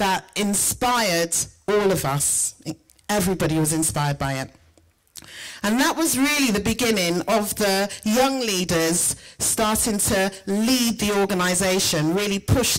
inspired all of us. Everybody was inspired by it. And that was really the beginning of the young leaders starting to lead the organisation, really push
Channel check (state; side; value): identical; both; correlation 1.00